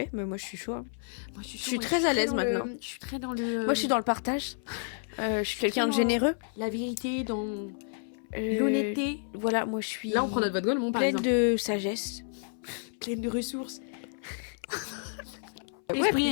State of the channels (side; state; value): right; silent; 58 dB below the other